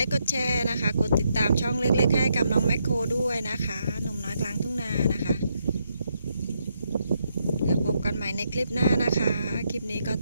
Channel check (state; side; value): inverted; both; correlation -0.78